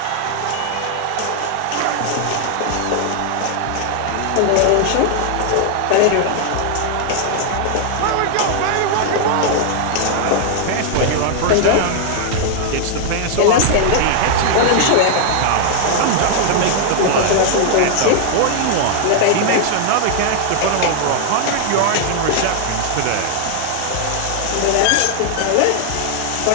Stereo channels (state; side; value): different; both; correlation 0.00